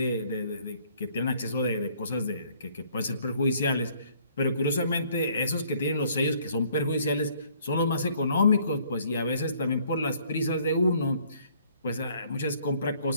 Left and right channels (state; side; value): inverted; both; correlation -0.61